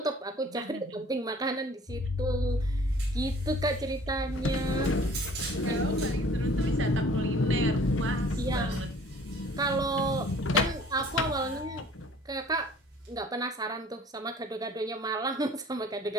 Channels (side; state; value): both; normal; correlation 0.51